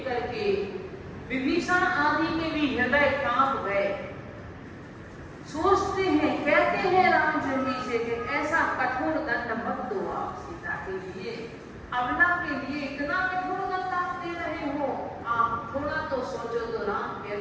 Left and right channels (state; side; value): identical; both; correlation 1.00